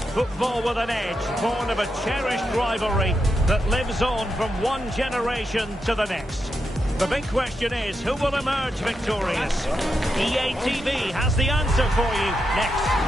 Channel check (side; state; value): both; normal; correlation 0.85